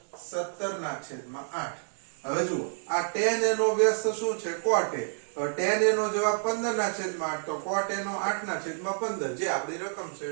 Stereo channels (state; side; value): silent; left; digital silence